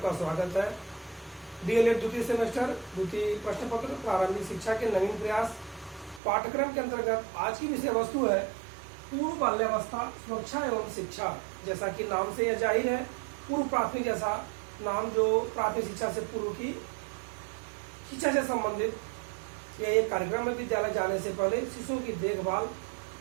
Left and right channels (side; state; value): left; drops out; at 6.2 s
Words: स्वागत है। डीएलएड द्वितीय सेमेस्टर द्वितीय प्रश्न पत्र प्रारंभिक शिक्षा के नवीन प्रयास पाठ्यक्रम के अंतर्गत आज की विषय वस्तु है पूर्व बाल्यावस्था सुरक्षा एवं शिक्षा। जैसा कि नाम से यह जाहिर है, पूर्व प्राथमिक जैसा नाम जो प्राथमिक शिक्षा से पूर्व की शिक्षा से संबंधित यह एक कार्यक्रम है। विद्यालय जाने से पहले शिशुओं की देखभाल